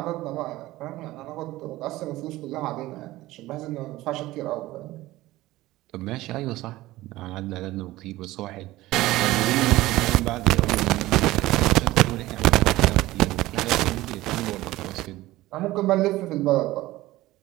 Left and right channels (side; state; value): left; quieter; 17.4 dB